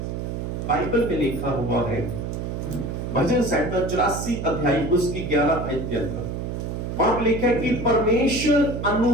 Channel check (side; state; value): right; noise; hum, 4 dB below the sound